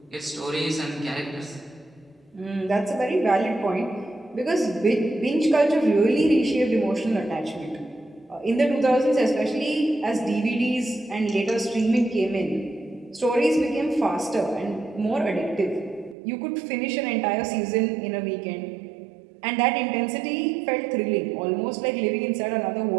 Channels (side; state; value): left; drops out; at 16.2 s